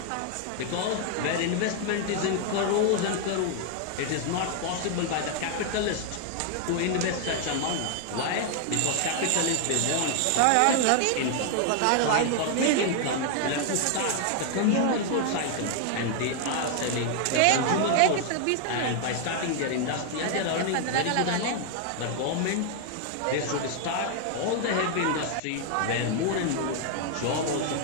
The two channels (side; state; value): both; different; correlation 0.00